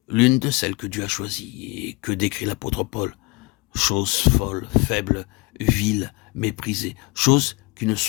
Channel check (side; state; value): right; quieter; 25.1 dB